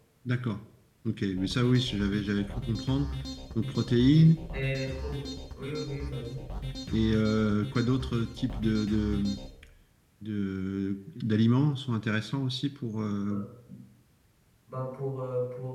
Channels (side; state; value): both; identical; correlation 1.00